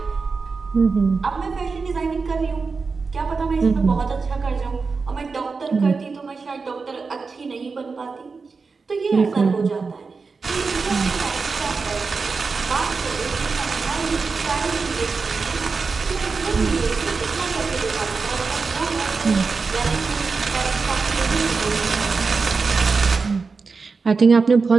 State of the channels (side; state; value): left; quieter; 4.6 dB